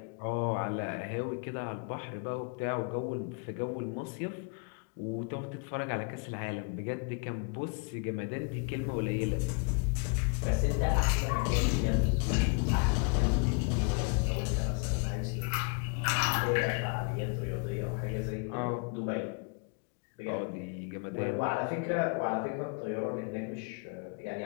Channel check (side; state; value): right; quieter; 36.7 dB